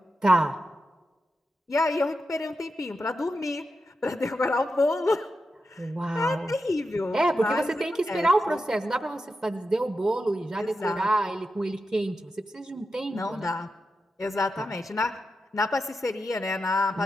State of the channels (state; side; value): normal; both; correlation 0.88